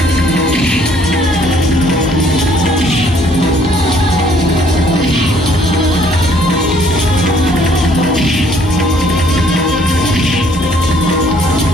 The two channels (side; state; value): both; normal; correlation 0.62